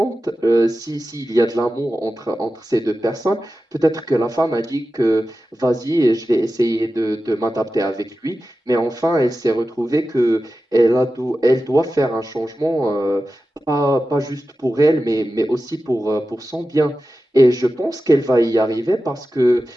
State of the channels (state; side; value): normal; both; correlation 0.93